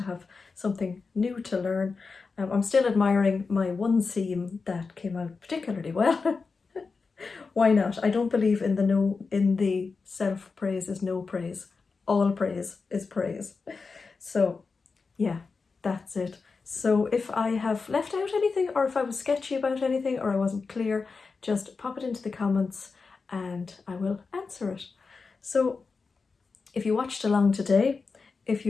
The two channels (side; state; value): right; quieter; 4.6 dB